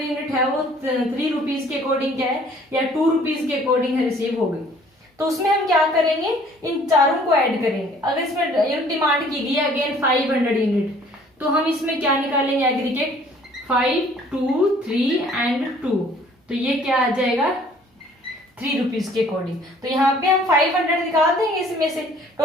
यूनिट है वो 3 रुपीज के अकॉर्डिंग क्या है या 2 रुपीज के अकॉर्डिंग रिसीव हो गई, तो उसमें हम क्या करेंगे, इन चारों को ऐड करेंगे। अगर इसमें यूनिट डिमांड की गई है अगेन 500 यूनिट, तो हम इसमें क्या निकालेंगे एग्रीगेट 5, 2, 3 एंड 2, तो ये क्या आ जाएगा 3 रुपीज के अकॉर्डिंग। तो यहाँ पे हम 500 निकाल देंगे, इसमें से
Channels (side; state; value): both; normal; correlation 0.56